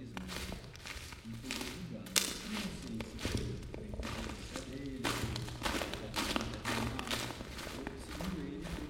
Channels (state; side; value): identical; both; correlation 1.00